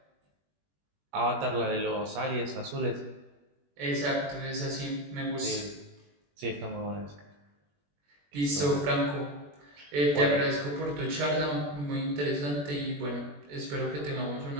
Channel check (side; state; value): left; late; 21 ms